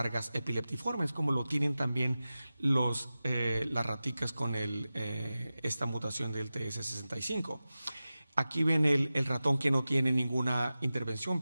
epileptiformes, como lo tienen también las raticas con esta mutación del TS65. Aquí ven el ratón que no tiene ninguna intervención,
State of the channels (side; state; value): both; inverted; correlation -0.95